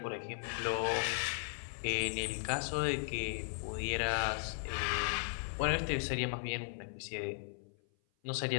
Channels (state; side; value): silent; right; 53 dB below the other